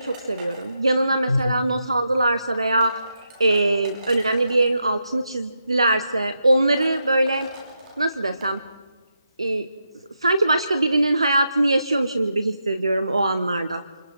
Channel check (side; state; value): both; inverted; correlation -0.84